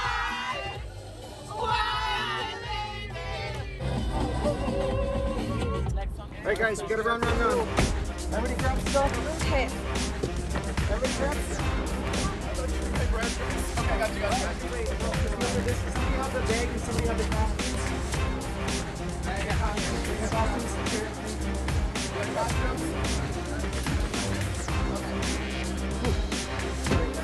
Alright guys, we gotta run. Everybody grab stuff? Okay. Everybody grab stuff? okay, I got you. Wait, no, because we ordered this. Somebody have the bag and somebody have the costumes. Bag and costumes. Here, thank you. You got costumes? Okay. Sorry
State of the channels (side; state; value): both; identical; correlation 1.00